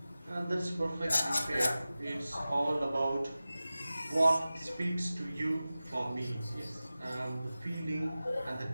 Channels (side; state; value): both; inverted; correlation -0.96